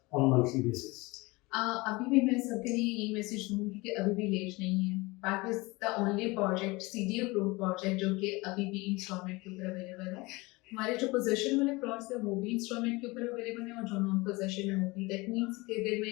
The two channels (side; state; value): right; quieter; 23.5 dB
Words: on monthly basis? अभी भी मैं सबके लिए यही मैसेज दूंगी कि अभी भी लेट नहीं है। Park is the only project, CD approved project, जो कि अभी भी इंस्टॉलमेंट के ऊपर अवेलेबल है। हमारे जो पोजेशन वाले प्लॉट्स है वो भी इंस्टॉलमेंट के ऊपर अवेलेबल है, और जो नॉन पोजेशन है वो भी। दैट मीन्स कि अगर